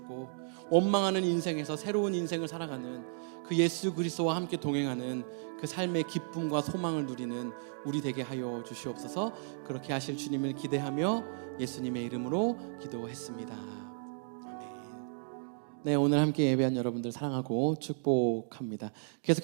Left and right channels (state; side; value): silent; left; digital silence